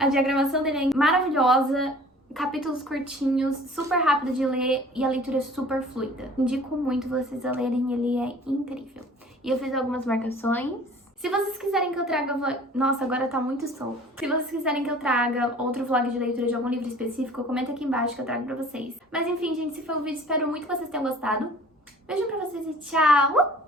diagramação dele é maravilhosa, capítulos curtinhos, super rápido de ler e a leitura é super fluida. Indico muito vocês a lerem, ele é incrível. E eu fiz algumas marcações. Se vocês quiserem que eu traga... Nossa, agora tá muito sol. Se vocês quiserem que eu traga outro vlog de leitura de algum livro específico, comenta aqui embaixo que eu trago pra vocês. Mas enfim, gente, esse foi o vídeo. Espero muito que vocês tenham gostado. Beijo pra vocês e tchau!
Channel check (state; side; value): normal; both; correlation 0.48